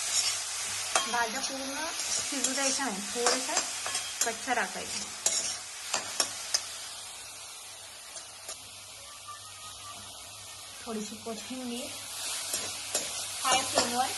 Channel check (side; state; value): both; identical; correlation 1.00